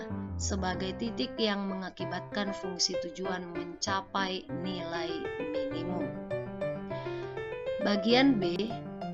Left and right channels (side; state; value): both; identical; correlation 1.00